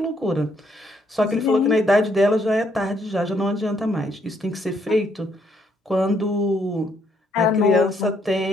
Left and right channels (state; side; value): normal; both; correlation 0.71